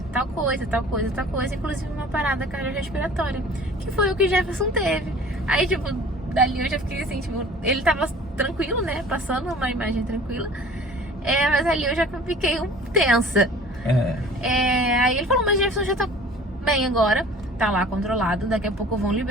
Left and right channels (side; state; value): both; normal; correlation 0.46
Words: tal coisa, inclusive uma parada cardiorrespiratória, que foi o que o Jefferson teve. Aí, tipo, dali eu já fiquei assim, tipo, ele tava tranquilo, né? Passando uma imagem tranquila. Mas ali eu já fiquei tensa. Aí ele falou, mas Jefferson já tá bem agora, tá lá controlado, daqui a pouco vão